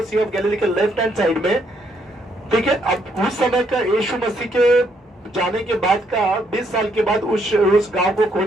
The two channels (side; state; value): both; normal; correlation 0.72